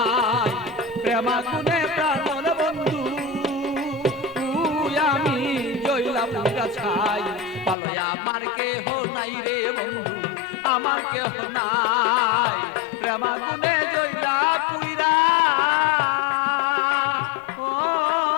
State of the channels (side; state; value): right; drops out; at 7.8 s